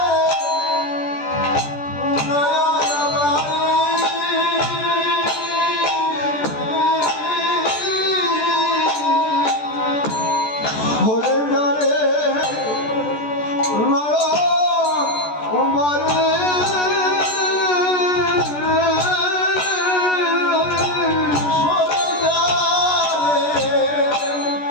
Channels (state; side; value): late; right; 14 ms